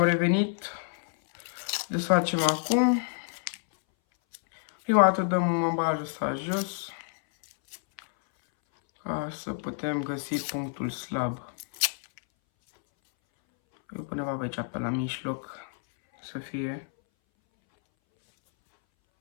revenit. Desfacem acum. Prima dată dăm ambalatul ăsta jos, ca să putem găsi punctul slab. Eu undeva pe aici, pe la mijloc, să fie.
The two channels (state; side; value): silent; right; 59 dB below the other